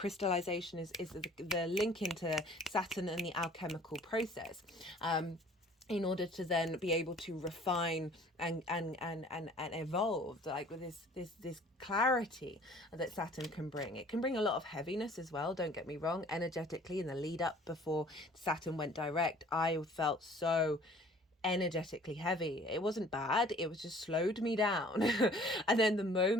is the link into Saturn and the alchemical process, in order to then be able to refine and evolve, like with this clarity that Saturn can bring. It can bring a lot of heaviness as well, don't get me wrong. Energetically, in the lead up before Saturn went direct, I felt so energetically heavy. It wasn't bad, it was just slowed me down. And then the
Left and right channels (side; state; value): both; normal; correlation 0.52